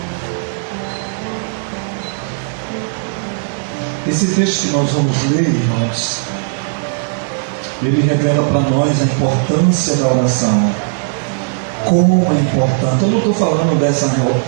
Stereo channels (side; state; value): left; silent; digital silence